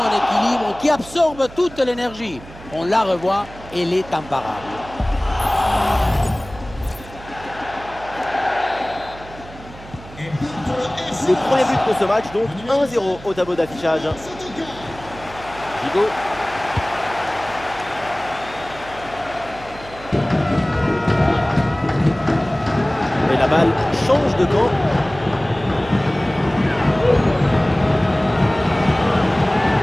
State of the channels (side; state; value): right; noise; hum, 18 dB below the sound